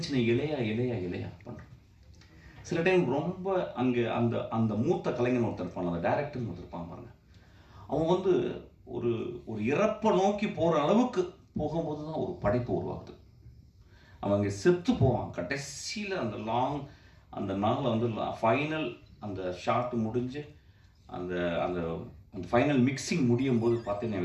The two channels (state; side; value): identical; both; correlation 1.00